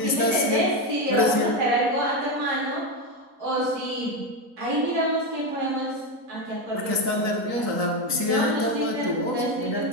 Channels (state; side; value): late; left; 3.9 ms